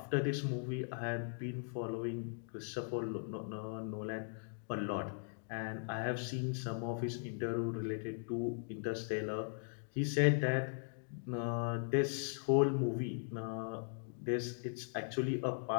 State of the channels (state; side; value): silent; right; digital silence